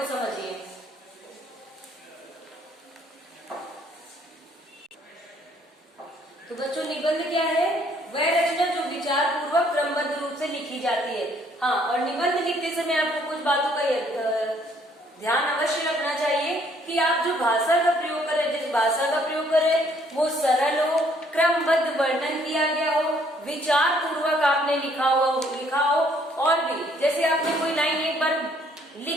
समझिए। तो बच्चों निबंध क्या है? वह रचना जो विचार पूर्वक क्रमबद्ध रूप से लिखी जाती है। हाँ, और निबंध लिखते समय आपको कुछ बातों का ध्यान अवश्य रखना चाहिए कि आप जो भाषा का प्रयोग करें, जिस भाषा का प्रयोग करें वो सरल हो, क्रमबद्ध वर्णन किया गया हो, विचार पूर्वक आपने लिखा हो। और भी जैसे आपने कोई लाइन एक बार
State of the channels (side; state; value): both; normal; correlation 0.64